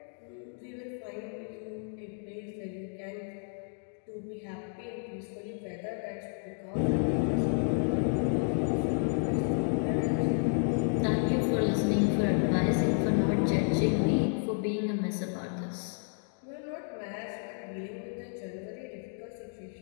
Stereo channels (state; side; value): silent; right; 55 dB below the other